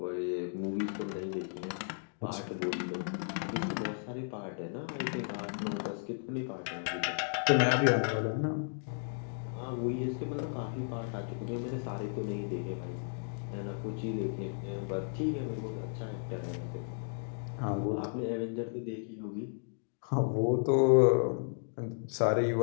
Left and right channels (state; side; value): silent; right; digital silence